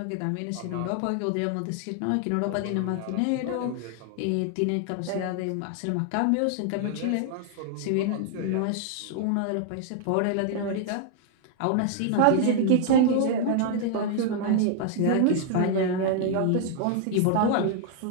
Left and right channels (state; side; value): different; both; correlation 0.00